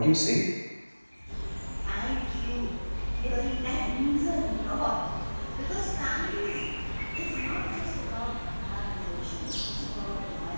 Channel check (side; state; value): both; inverted; correlation -1.00